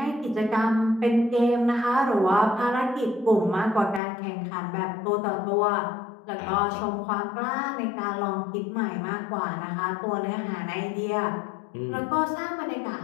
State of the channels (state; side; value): drops out; right; at 4.0 s